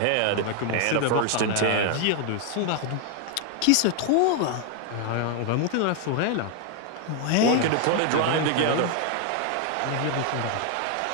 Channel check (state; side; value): different; both; correlation 0.00